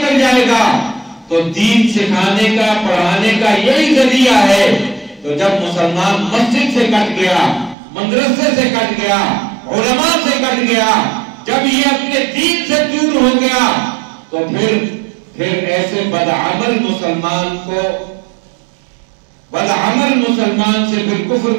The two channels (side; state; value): left; drops out; at 7.8 s